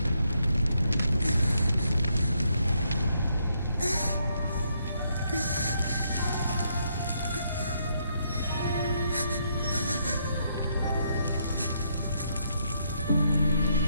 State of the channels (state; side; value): inverted; both; correlation -0.75